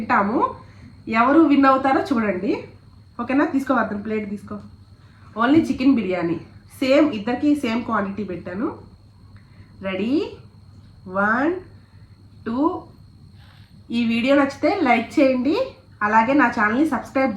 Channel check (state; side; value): identical; both; correlation 1.00